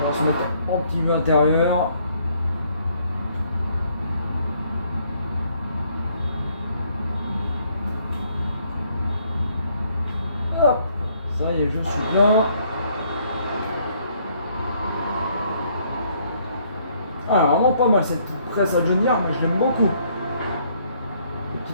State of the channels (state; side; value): inverted; both; correlation -0.66